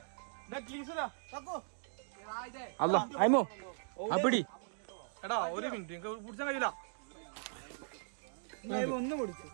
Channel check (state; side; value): silent; left; digital silence